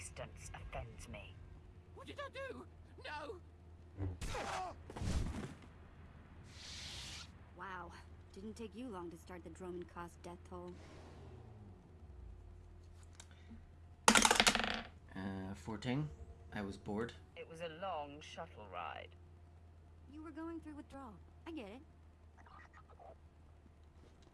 offends me. What did I do? No! Wow. Didn't take you long to start the Dromund Kaas death toll. 14. I was bored. It was a long shuttle ride. You were going through withdrawal. I get it.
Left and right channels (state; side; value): identical; both; correlation 1.00